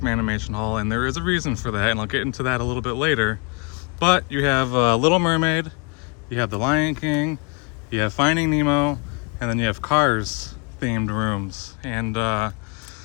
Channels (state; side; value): quieter; right; 32.3 dB